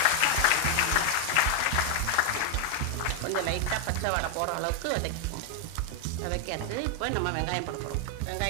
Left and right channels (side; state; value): both; different; correlation 0.00